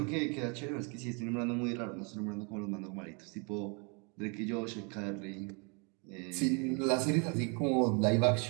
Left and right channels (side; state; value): left; quieter; 34.0 dB